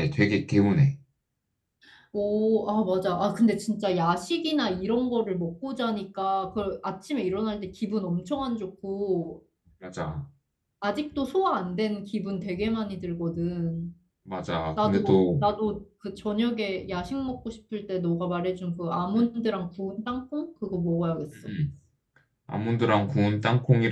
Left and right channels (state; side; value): identical; both; correlation 1.00